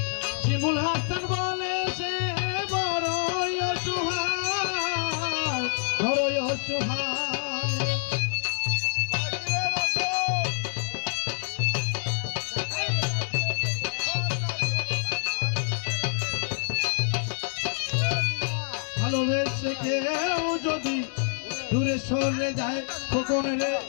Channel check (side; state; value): right; silent; digital silence